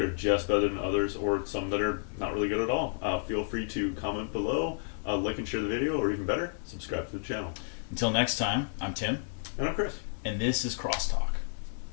are just better than others, or some that are not really good at all? Feel free to comment below, like and share the video, or even better, subscribe to the channel. Until next time, I'm Tim. And I'm Chris. And this is Crosstalk.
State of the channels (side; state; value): right; silent; 57 dB below the other